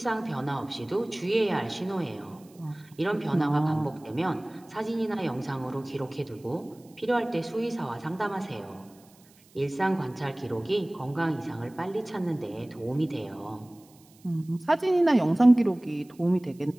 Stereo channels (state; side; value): noise; right; hiss, 29 dB below the sound